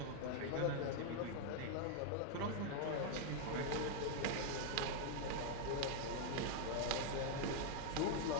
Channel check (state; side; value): different; both; correlation 0.00